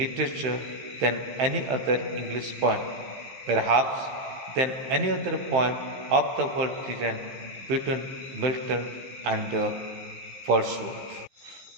than any other English poem, perhaps than any other poem of the world written between Milton and Wordsworth.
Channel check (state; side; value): late; left; 15 ms